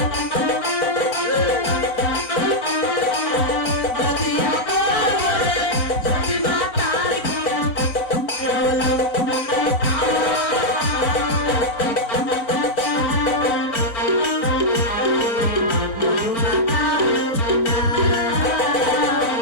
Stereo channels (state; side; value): late; right; 4.4 ms